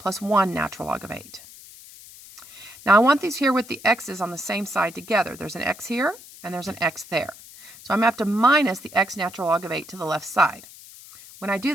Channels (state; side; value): noise; left; hiss, 19 dB below the sound